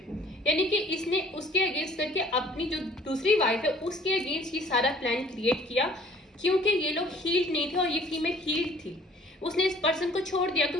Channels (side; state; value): both; normal; correlation 0.54